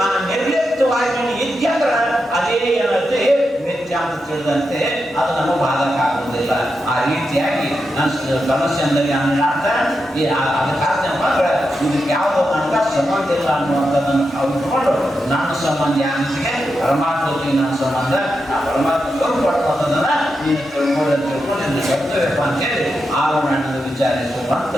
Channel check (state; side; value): normal; both; correlation 0.87